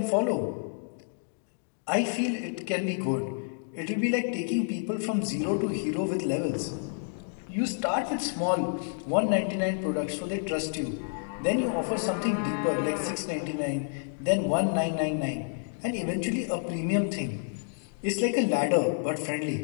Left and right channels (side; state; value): right; silent; digital silence